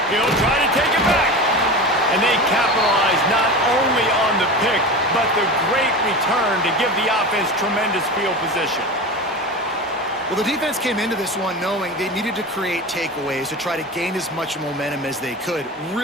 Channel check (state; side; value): normal; both; correlation 0.29